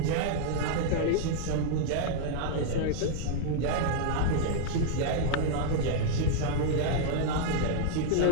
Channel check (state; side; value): different; both; correlation -0.01